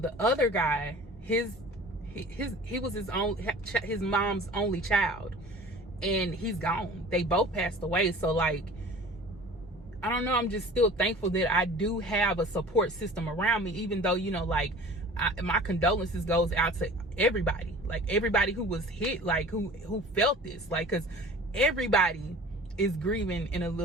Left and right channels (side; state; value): both; normal; correlation 0.42